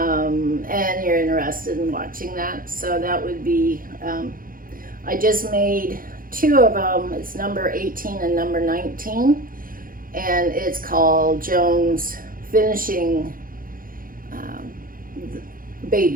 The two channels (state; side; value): late; left; 0.41 ms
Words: you're interested in watching that. So that would be, I just made 2 of them. It's number 18 and number 19. And it's called Joan's Finishing